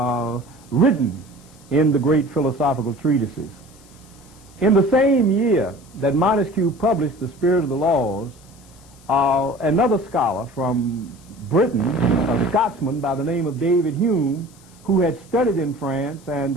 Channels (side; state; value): left; noise; hiss, 26 dB below the sound